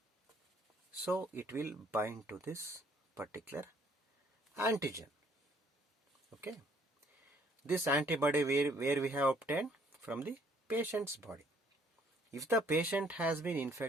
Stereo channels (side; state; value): both; normal; correlation 0.63